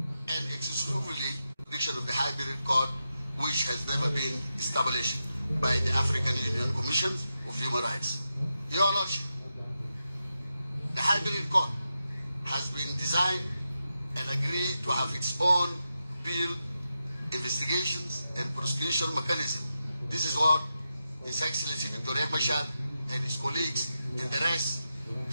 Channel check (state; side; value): inverted; both; correlation -0.89